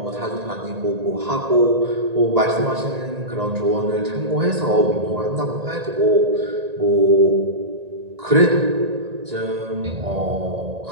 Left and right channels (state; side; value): late; left; 1.8 ms